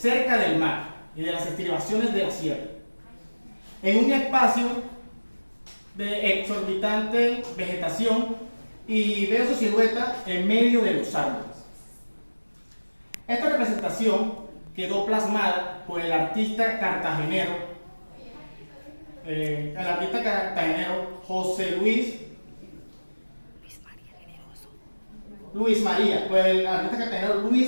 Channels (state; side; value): inverted; both; correlation -1.00